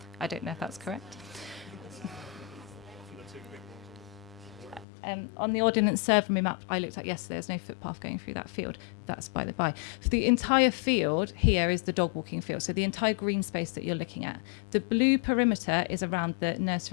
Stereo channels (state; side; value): drops out; right; at 4.9 s